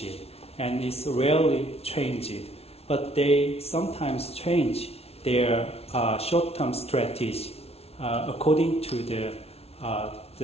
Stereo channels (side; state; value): right; late; 0.30 ms